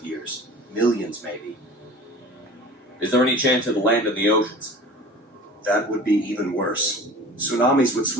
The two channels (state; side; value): normal; both; correlation 0.41